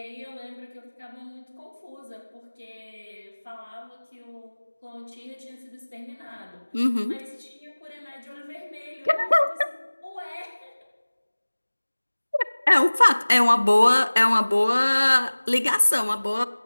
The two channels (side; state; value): both; inverted; correlation -1.00